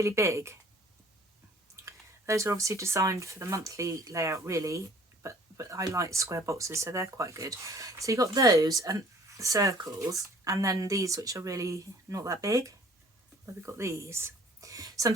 big. Those are obviously designed for the monthly layout, really, but I like square boxes, so they're quite good. So you've got those and circles, and then these which are really not that big. But we've got these. So I'm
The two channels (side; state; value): both; normal; correlation 0.53